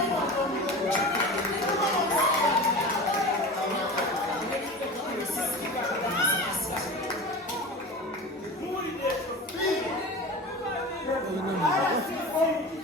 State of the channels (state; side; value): normal; both; correlation 0.32